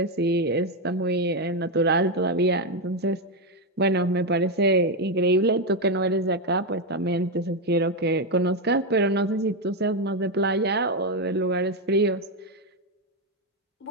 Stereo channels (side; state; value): both; normal; correlation 0.06